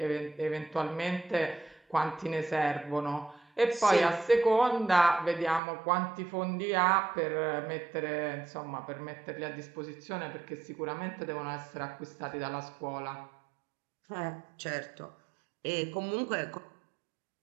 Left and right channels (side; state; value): left; drops out; at 5.6 s